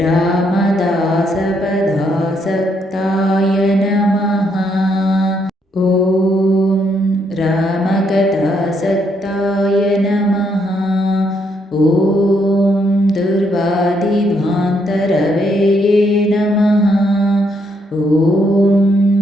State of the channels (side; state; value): both; normal; correlation 0.74